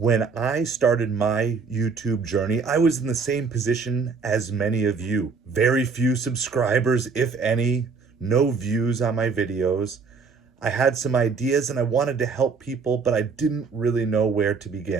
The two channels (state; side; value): quieter; left; 4.9 dB